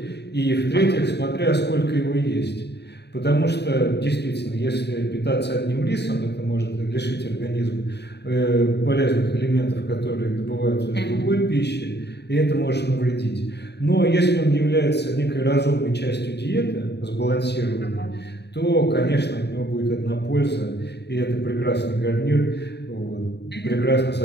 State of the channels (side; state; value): right; late; 0.49 ms